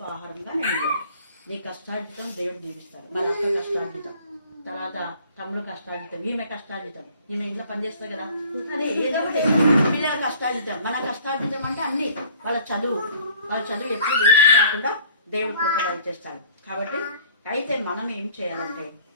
ఆహారంగా నేను నీ కష్టార్జితం దేవుడు జీవిస్తాడు. మరి అక్క కష్టార్జితం, తర్వాత తమ్ముడు కష్టార్జితం, ఈమె కష్టార్జితం, ఈమె ఇంట్లో పనిచేస్తుంది కదా, అదే ఏదో ఒకటి పిల్లల కష్టార్జితం, మన కష్టార్జితం అంటే అన్ని వాళ్ళ చదువు ఎప్పుడు వేస్ట్ కాకుండా దేవుడు కృప చేస్తాడు. కాబట్టి అయితే మనం ఏం చేయాలంటే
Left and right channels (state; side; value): inverted; both; correlation -0.52